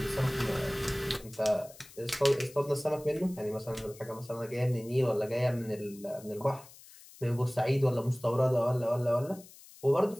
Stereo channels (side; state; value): left; noise; hiss, 21 dB below the sound